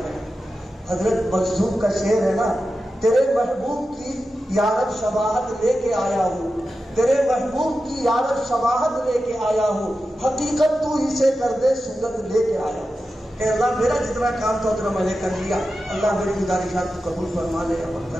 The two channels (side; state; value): both; normal; correlation 0.91